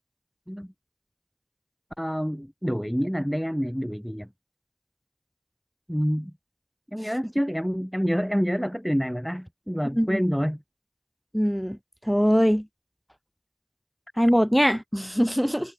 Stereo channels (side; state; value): both; identical; correlation 1.00